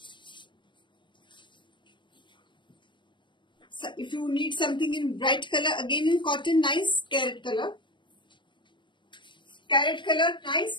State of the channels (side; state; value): right; late; 0.23 ms